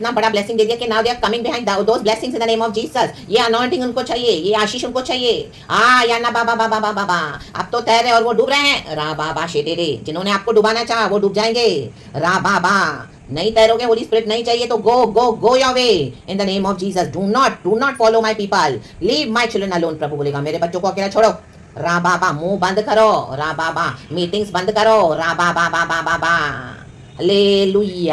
बड़ा ब्लेसिंग दे दिया कि now they are coming behind those blessings in the name of Jesus. ये अनॉइंटिंग उनको चाहिए, ये आशीष उनको चाहिए। या ना बाबा बाबा बाबा बाबा। अब तो तैरे और वो डूब रहे हैं। रा बाबा शेटेरे। जिन्होंने आपको डुबाना चाहा वो डूब जाएंगे। रा बाबा। नहीं तैरोगे, होली स्पिरिट नहीं चाहिए तो go go go your way in the name of Jesus. Do not follow my people, leave my children alone. प्रभु बोलेगा मेरे बच्चों को अकेला छोड़ो। रा बाबा। मुंह बंद करो। रा बाबा। मीटिंग्स बंद करो। रा बाबा बाबा बाबा।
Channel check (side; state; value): both; identical; correlation 1.00